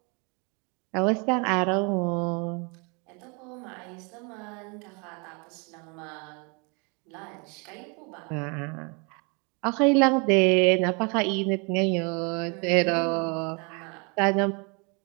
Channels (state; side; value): quieter; left; 32.4 dB